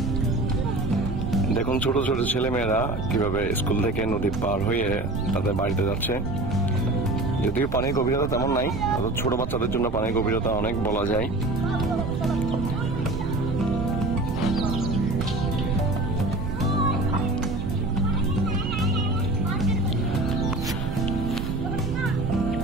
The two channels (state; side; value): noise; right; rumble, 5 dB below the sound